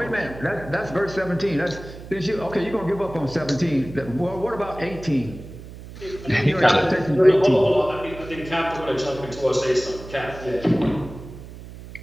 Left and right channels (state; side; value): noise; right; hum, 15 dB below the sound